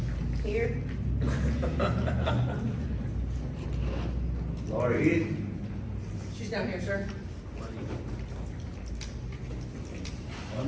Here. Laura Heath. She's down here, sir.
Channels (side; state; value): both; identical; correlation 1.00